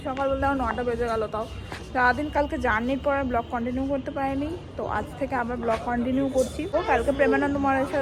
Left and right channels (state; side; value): identical; both; correlation 1.00